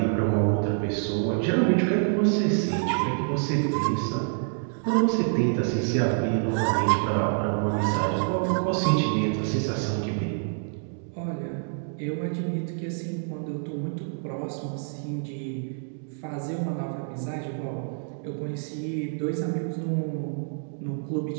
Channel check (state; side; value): silent; left; digital silence